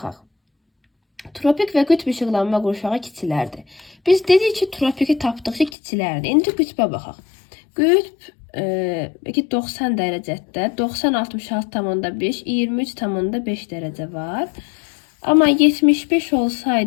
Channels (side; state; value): right; drops out; at 5.7 s